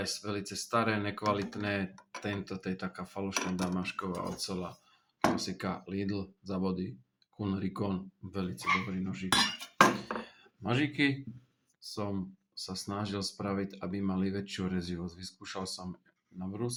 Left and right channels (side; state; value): both; identical; correlation 1.00